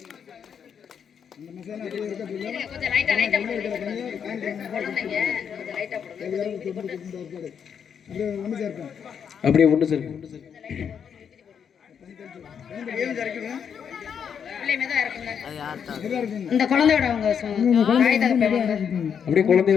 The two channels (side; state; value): right; quieter; 7.5 dB